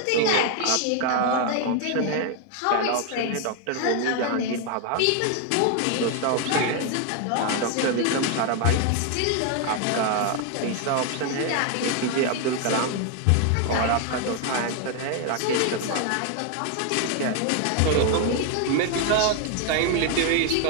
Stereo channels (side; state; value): both; different; correlation 0.01